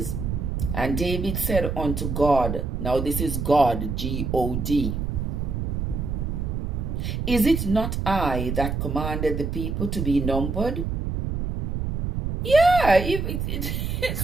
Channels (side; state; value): right; noise; rumble, 2 dB below the sound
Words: And David said unto God, now this is God, G-O-D, Is it not I that commanded the people to be numbered? Yeah,